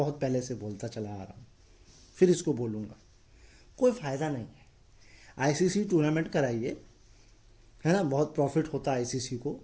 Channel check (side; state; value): both; identical; correlation 1.00